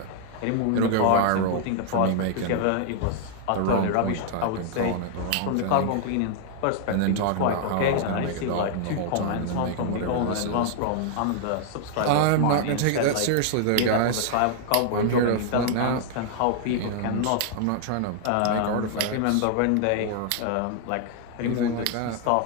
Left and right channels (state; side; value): different; both; correlation 0.00